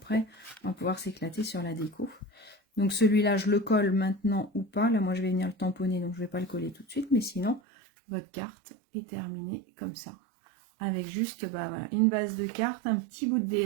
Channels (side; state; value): left; drops out; at 7.6 s